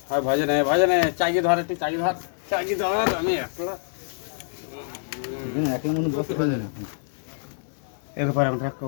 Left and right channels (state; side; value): silent; right; 61 dB below the other